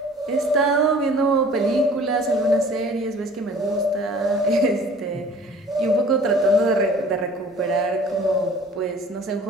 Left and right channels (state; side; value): normal; both; correlation 0.49